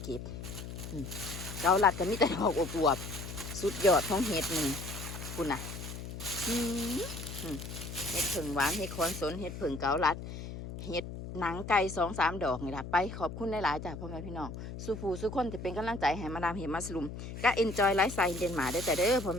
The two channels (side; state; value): left; noise; hum, 9 dB below the sound